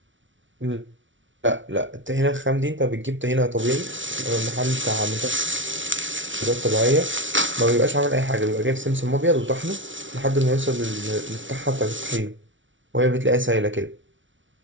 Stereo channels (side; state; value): left; late; 0.56 ms